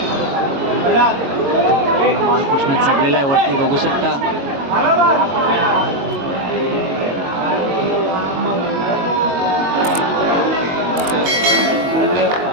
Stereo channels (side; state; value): left; late; 22 ms